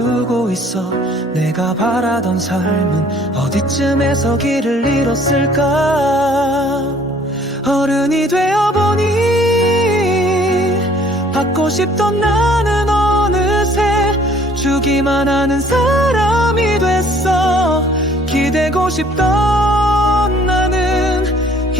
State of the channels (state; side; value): normal; both; correlation 0.57